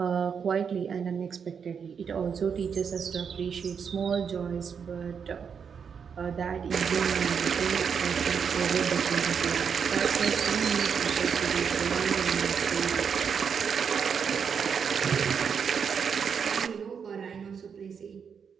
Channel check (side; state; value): left; quieter; 6.7 dB